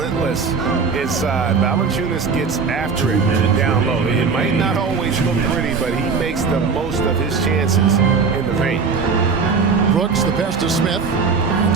inside. Valanciunas gets after it down low. It might not always look pretty, but he makes the most of his chances in the paint. Brooks, the pass to Smith. And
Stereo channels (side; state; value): left; quieter; 5.1 dB